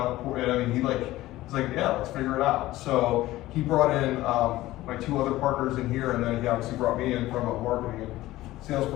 I mean, he's like, "Yeah, let's figure it out." So he brought in my two other partners in here, and then he obviously brought me in from a marketing and sales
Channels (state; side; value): quieter; right; 16.6 dB